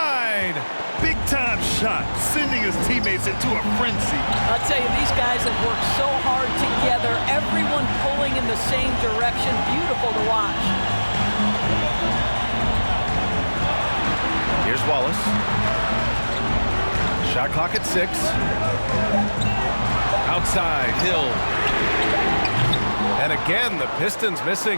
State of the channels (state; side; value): inverted; both; correlation -1.00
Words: Big time shot, sending his teammates into a frenzy. I'll tell you, these guys have worked so hard together. Everyone pulling in the same direction. Beautiful to watch. Here's Wallace. Shot clock at 6. Outside, Hill. And again, the Pistons